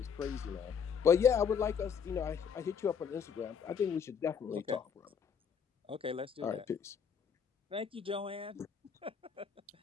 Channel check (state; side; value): quieter; right; 6.9 dB